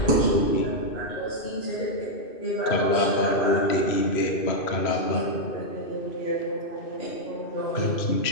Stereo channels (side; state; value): right; late; 2.5 ms